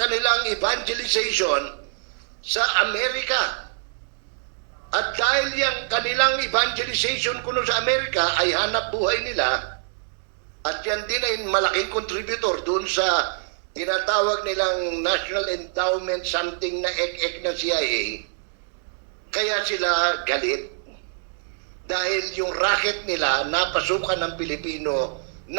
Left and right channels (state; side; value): silent; left; digital silence